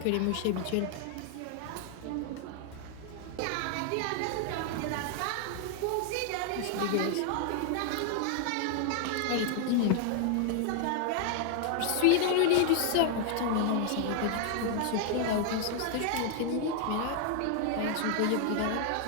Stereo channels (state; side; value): different; both; correlation 0.00